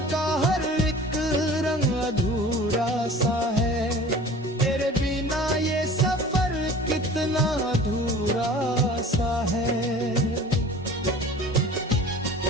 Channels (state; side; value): normal; both; correlation 0.43